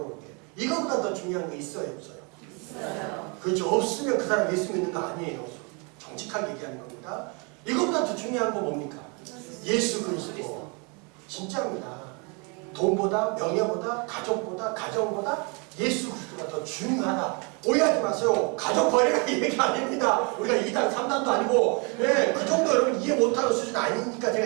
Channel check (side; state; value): left; quieter; 32.9 dB